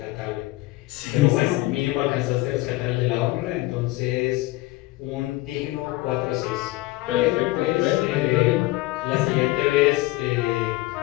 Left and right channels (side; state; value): right; quieter; 19.5 dB